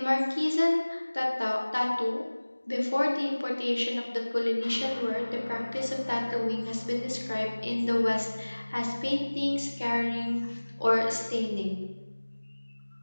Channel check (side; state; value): both; inverted; correlation -1.00